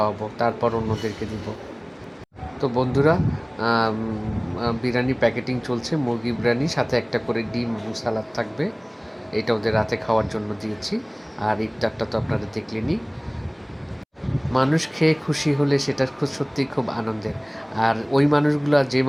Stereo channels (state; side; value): identical; both; correlation 1.00